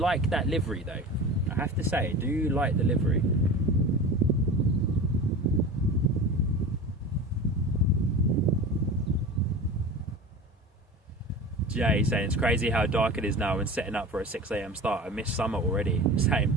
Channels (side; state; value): both; normal; correlation 0.33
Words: that livery though. I have to say, I do like the livery. Jay saying it's crazy how dark it is now and setting up for a 6 AM start. I miss summer already.